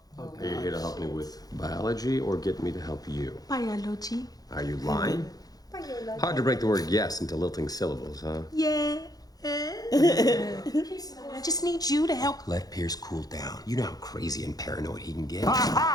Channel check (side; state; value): right; late; 0.18 ms